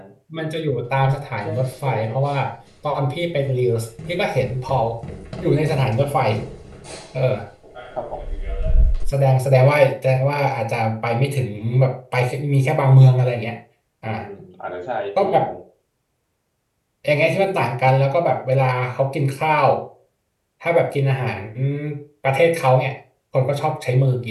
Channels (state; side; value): identical; both; correlation 1.00